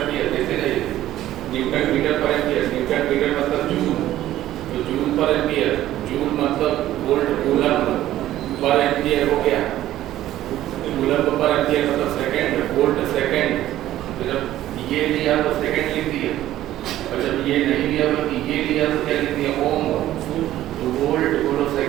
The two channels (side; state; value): left; quieter; 13.7 dB